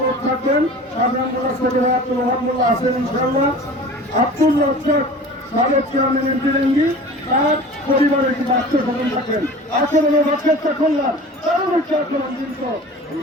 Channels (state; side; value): normal; both; correlation 0.40